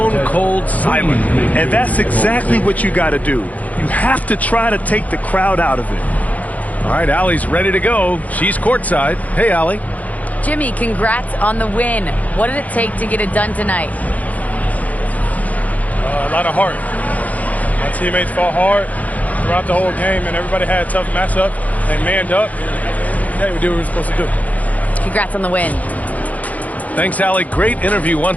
cold silent. And that's exactly what you got to do. You have to try to take the crowd out of it. All right, Allie's ready to go. She's courtside. Hey, Allie. Jimmy, congrats on the win. What did it take to get it done tonight? A lot of heart. My teammates fought hard throughout the whole game, and everybody had a tough matchup. They manned up. Hey, we did what we were supposed to do. Congrats on the win. Thanks, Allie. Great interview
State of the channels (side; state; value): right; late; 0.074 ms